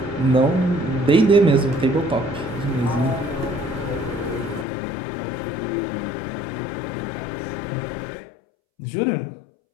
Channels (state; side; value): drops out; right; at 4.7 s